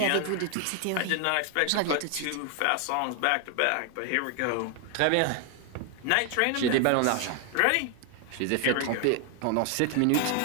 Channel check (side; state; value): both; different; correlation 0.01